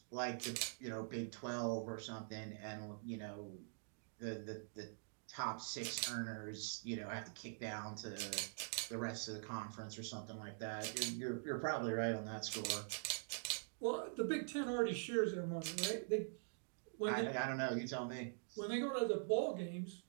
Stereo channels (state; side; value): silent; left; digital silence